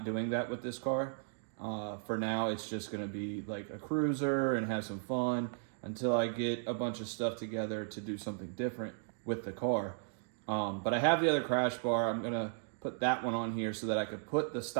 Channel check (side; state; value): left; silent; digital silence